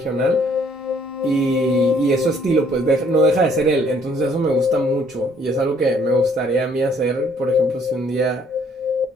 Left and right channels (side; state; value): both; normal; correlation 0.63